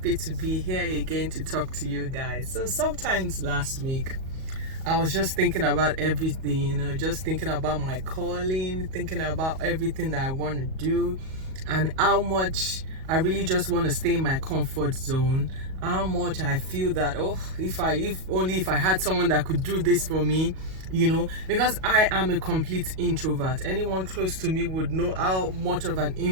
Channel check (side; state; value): left; late; 38 ms